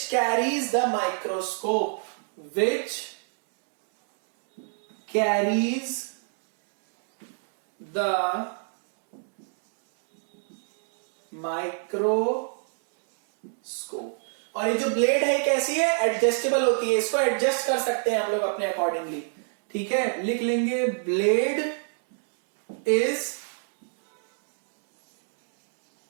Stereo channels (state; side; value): silent; left; 59 dB below the other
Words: carries the microscope, which carries the microscope। और ये जो ब्लेड है कैसी है, एडजस्टेबल होती है, इसको एडजस्ट कर सकते हैं हम लोग अपने अकॉर्डिंगली। ठीक है, लिख लेंगे blade is